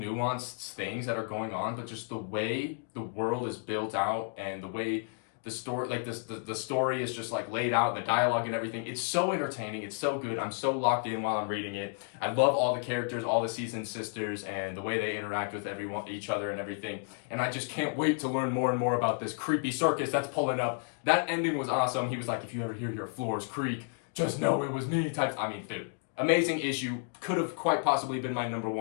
things that are going on, but just the way the world is built out and the way the story, like the story is just like laid out, and the dialogue and everything. It's so entertaining. It's so good. I'm so locked in while I'm reading it. I love all the characters, all the Seasons sisters, and the way they interact with each other and everything. And I just can't wait to learn more and more about this creepy circus that's pulling up. That ending was awesome. He was like, if you ever hear your floors creak, just know it was me types. I mean, dude, amazing issue. Could have quite possibly been my number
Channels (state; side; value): silent; right; 57 dB below the other